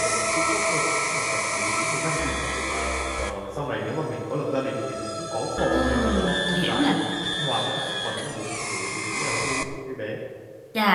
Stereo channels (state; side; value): identical; both; correlation 1.00